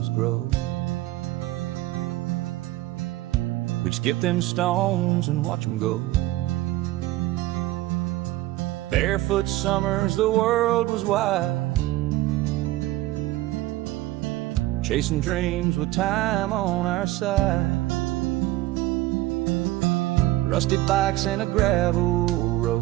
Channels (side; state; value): left; quieter; 17.0 dB